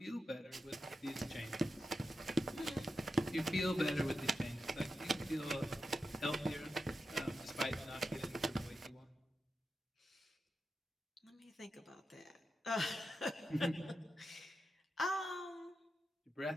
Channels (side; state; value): both; normal; correlation 0.89